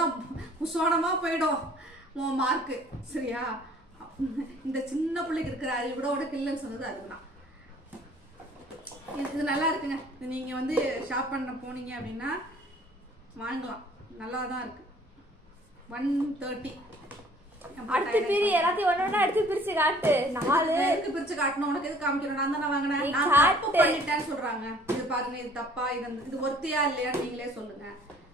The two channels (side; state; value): both; normal; correlation 0.54